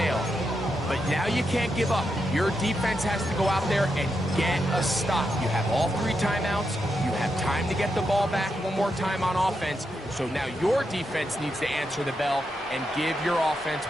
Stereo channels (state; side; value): normal; both; correlation 0.84